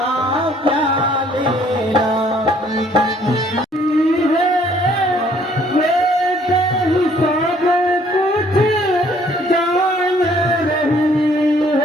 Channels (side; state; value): both; normal; correlation 0.61